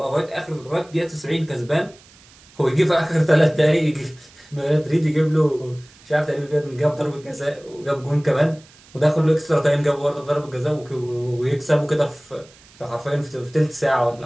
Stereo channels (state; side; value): noise; right; hiss, 26 dB below the sound